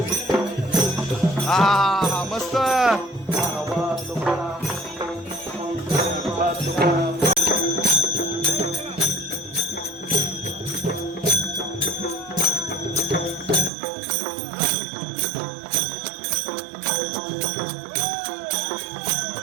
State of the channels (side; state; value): left; drops out; at 13.7 s